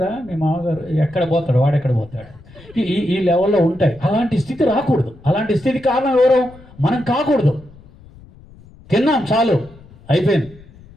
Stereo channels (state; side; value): noise; left; rumble, 23 dB below the sound